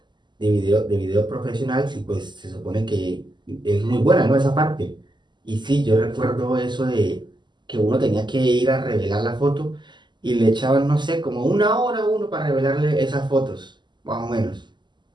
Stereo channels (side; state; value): left; late; 0.21 ms